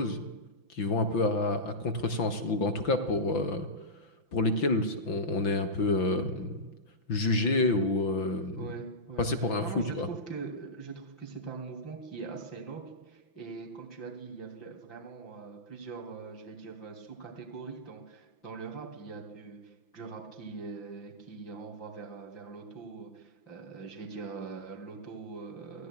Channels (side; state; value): right; late; 5.9 ms